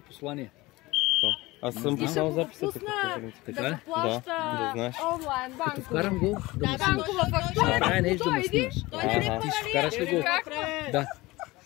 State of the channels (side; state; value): right; quieter; 20.6 dB